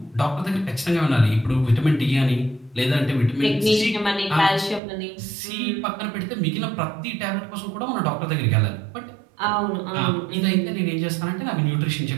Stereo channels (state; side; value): drops out; left; at 4.8 s